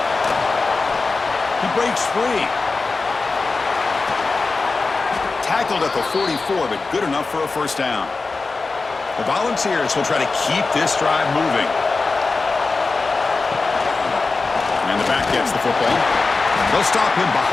He breaks free. Tackled at the 44, but good enough for a first down. The Volunteers will try to keep this drive moving. And the back gets the football. They'll stop him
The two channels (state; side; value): quieter; right; 3.9 dB